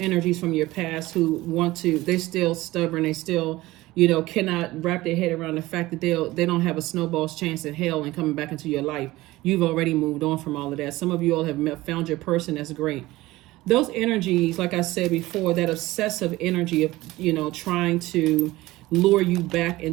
from your past who they're still stubborn. They still, you know, cannot wrap their head around the fact that they don't have a snowball's chance in hell and coming back into your life. You've already moved on from all of that. Some of you all have found your person. That's great. Those energies, like I said before, that obsessive energy of, you know, trying to lure you back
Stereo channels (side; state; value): left; quieter; 18.4 dB